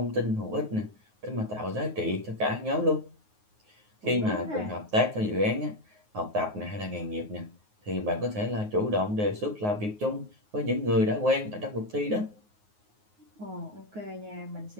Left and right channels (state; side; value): late; left; 9.5 ms